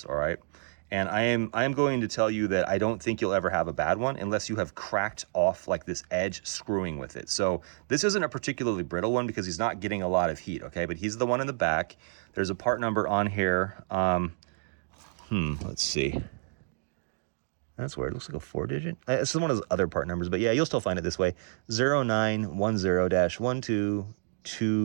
all right? And I am going to tell you that I don't think you'll ever have a bad one unless you have cracked off like this edge screwing with it. So this isn't a particularly brittle one because he's not getting a lot of heat, okay? But he's the one in the back. There's a part number on here. Let's see. That's weird. It looks like a 4-digit. It's one of those other part numbers, but yeah, you'll still find it this way.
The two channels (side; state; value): left; silent; digital silence